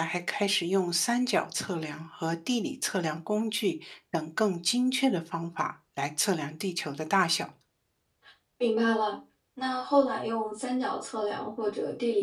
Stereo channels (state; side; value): identical; both; correlation 1.00